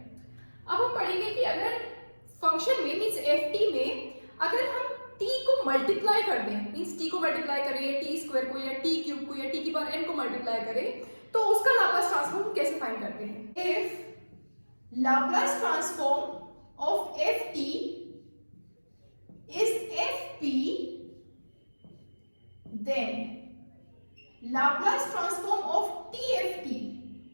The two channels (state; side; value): inverted; both; correlation -1.00